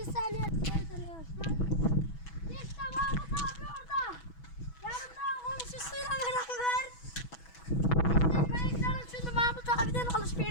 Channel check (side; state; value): right; late; 6.1 ms